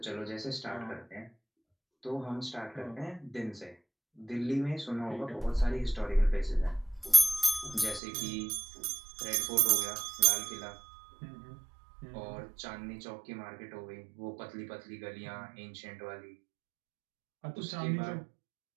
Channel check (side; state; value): left; drops out; at 8.0 s